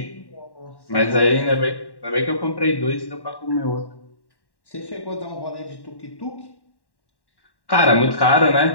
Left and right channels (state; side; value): late; right; 1.1 ms